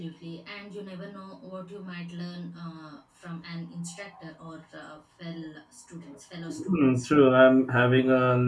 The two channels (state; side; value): identical; both; correlation 1.00